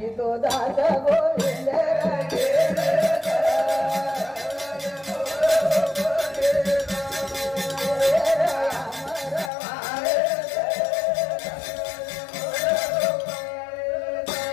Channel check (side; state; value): right; drops out; at 9.5 s